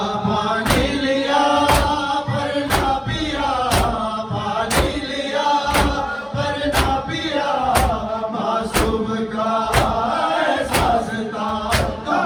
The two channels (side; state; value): both; identical; correlation 1.00